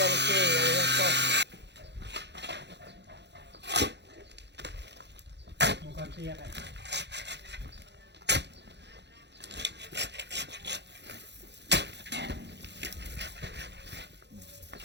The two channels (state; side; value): late; left; 0.50 ms